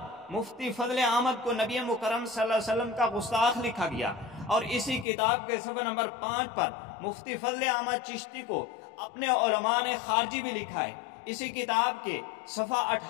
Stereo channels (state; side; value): drops out; right; at 5.1 s